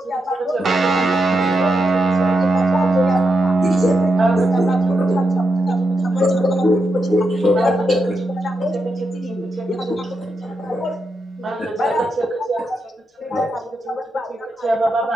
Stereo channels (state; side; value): normal; both; correlation 0.85